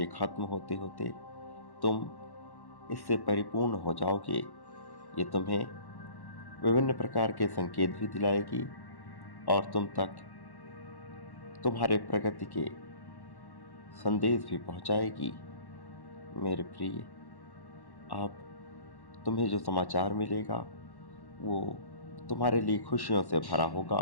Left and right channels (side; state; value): right; late; 1.1 ms